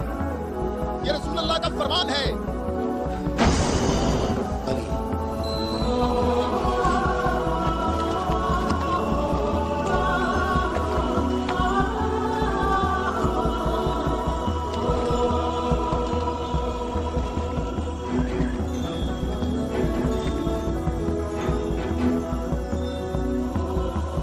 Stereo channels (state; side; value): identical; both; correlation 1.00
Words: ये रसूल अल्लाह का फरमान है।